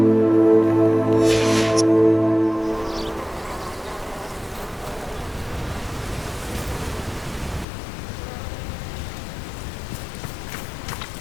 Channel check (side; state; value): right; drops out; at 7.7 s